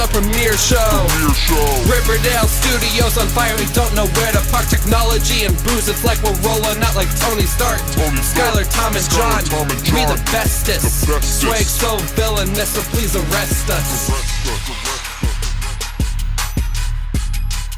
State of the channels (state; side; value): identical; both; correlation 1.00